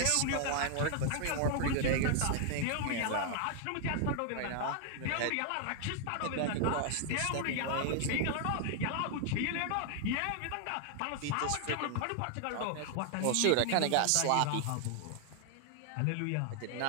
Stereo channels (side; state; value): both; different; correlation 0.00